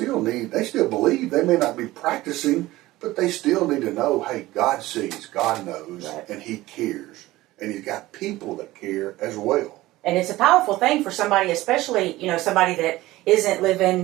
still believe. They may not be practicing, but they still need to know, hey, God sees, God knows, and He cares. And He's got people that care as well. And it's a powerful thing for somebody, especially, you know, somebody that isn't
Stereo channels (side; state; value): left; quieter; 17.7 dB